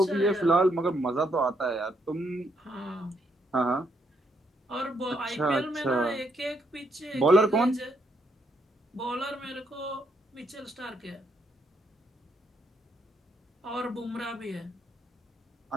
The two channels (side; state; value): both; normal; correlation 0.75